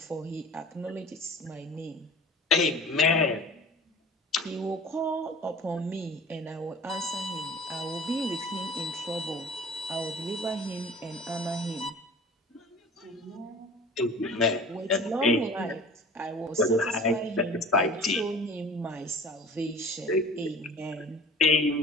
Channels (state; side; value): normal; both; correlation 0.41